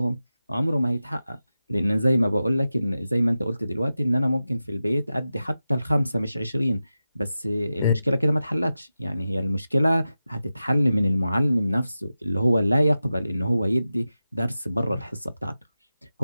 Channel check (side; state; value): both; inverted; correlation -0.93